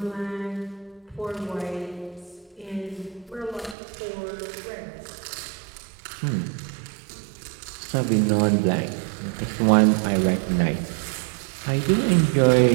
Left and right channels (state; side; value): drops out; left; at 3.8 s